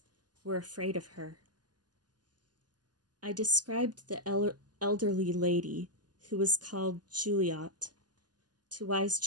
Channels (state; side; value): late; left; 0.70 ms